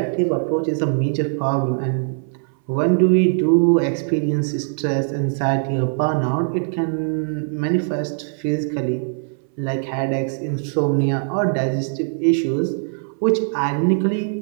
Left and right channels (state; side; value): silent; left; 62 dB below the other